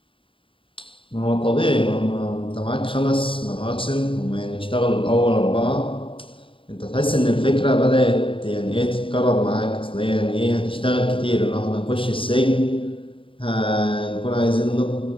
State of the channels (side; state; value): right; late; 0.25 ms